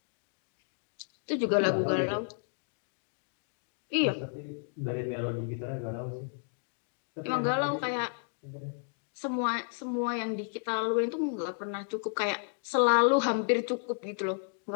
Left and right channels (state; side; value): silent; right; digital silence